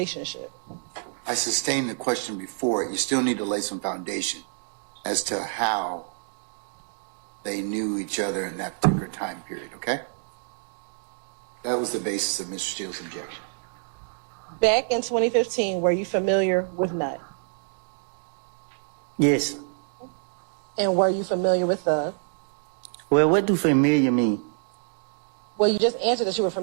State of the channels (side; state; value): left; silent; digital silence